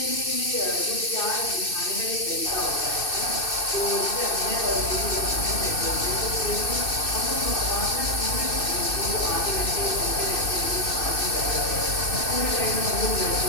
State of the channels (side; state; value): right; late; 2.6 ms